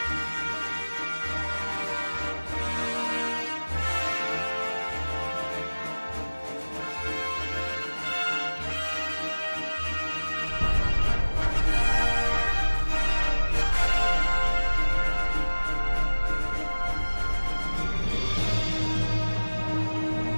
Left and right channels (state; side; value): inverted; both; correlation -1.00